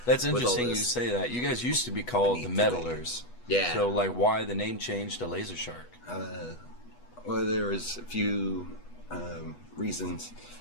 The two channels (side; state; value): right; late; 8.2 ms